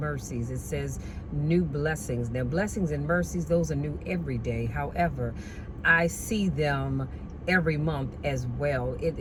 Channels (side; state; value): both; identical; correlation 1.00